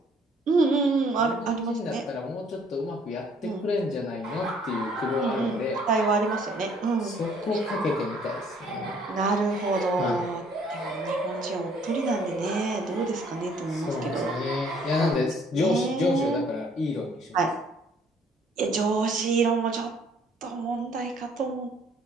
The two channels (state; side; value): normal; both; correlation 0.61